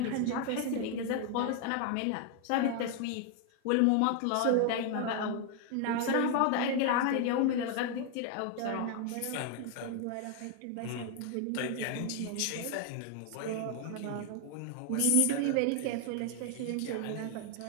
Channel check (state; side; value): different; both; correlation 0.00